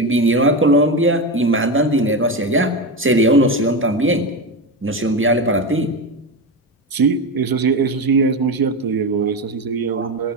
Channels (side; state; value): both; normal; correlation 0.17